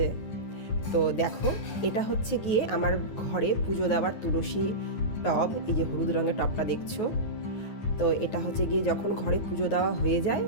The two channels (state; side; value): late; right; 9.4 ms